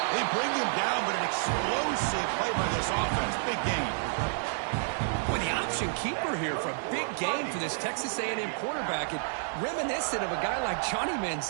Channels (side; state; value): left; silent; digital silence